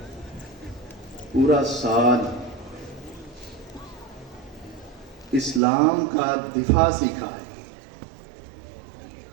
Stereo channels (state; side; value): drops out; left; at 5.6 s